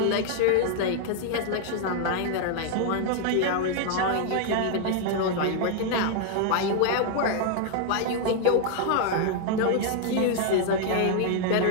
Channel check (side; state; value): both; different; correlation 0.00